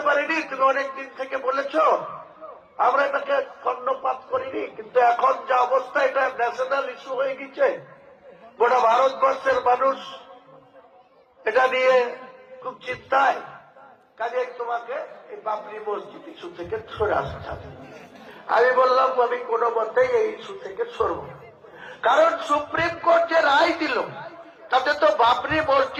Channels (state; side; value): identical; both; correlation 1.00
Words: পারিনি, তুমি অনেকদিন থেকে বলেছ, আমরা এটাকে কর্ণপাত করিনি, কিন্তু এখন যা অবস্থা এটা ন্যাশনাল ইস্যু হয়ে গেছে, গোটা ভারতবর্ষের মানুষ এটা নিয়ে খুব চিন্তায়, কাজে তোমাকে এই বাবরি মসজিদ ইস্যু থেকে সরে আসতে হবে। আমি বললাম আমি কোনো মতেই এই ইস্যু থেকে সরব না, কারণ সুপ্রিম কোর্ট যে রায় দিল তাতে তো বাবরি